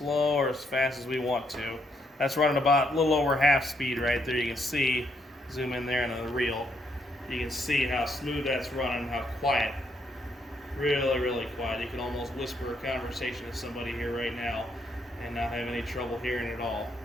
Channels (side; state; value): both; normal; correlation 0.74